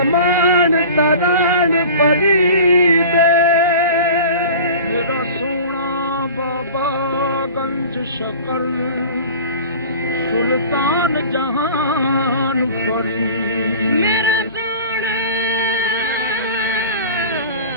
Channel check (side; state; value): both; inverted; correlation -0.39